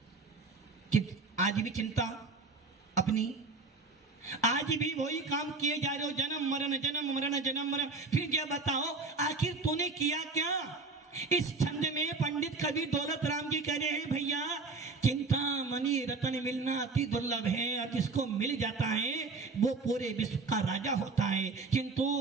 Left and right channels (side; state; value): left; quieter; 4.0 dB